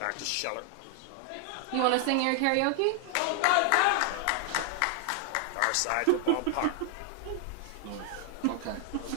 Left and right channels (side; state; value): both; different; correlation 0.00